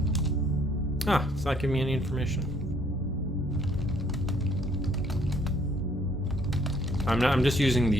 Ah, it's not giving me any information. I'm just using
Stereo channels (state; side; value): normal; both; correlation 0.63